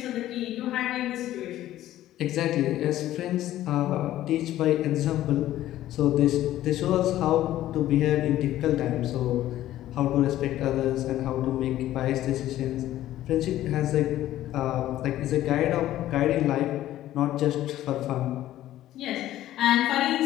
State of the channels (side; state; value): right; quieter; 13.8 dB